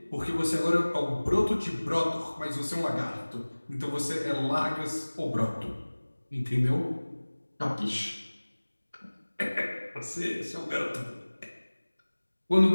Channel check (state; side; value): inverted; both; correlation -1.00